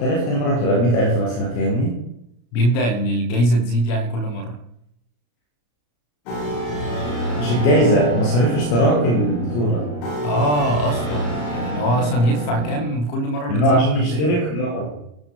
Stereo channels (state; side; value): late; right; 34 ms